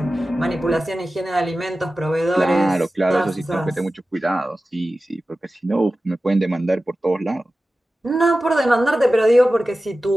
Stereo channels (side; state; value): both; normal; correlation 0.95